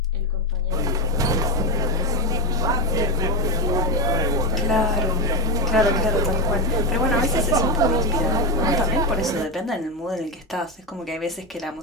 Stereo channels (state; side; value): normal; both; correlation 0.14